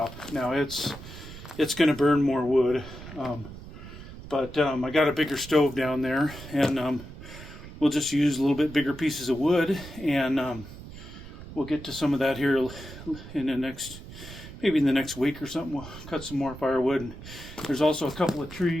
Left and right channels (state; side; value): noise; right; rumble, 14 dB below the sound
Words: Now it's going to burn more wood, but I got a bigger stove down there, and we'll just use a little bit bigger pieces of wood, and we'll get to some of that here in the next week or something. We'll cut some more firewood. And there's also a couple of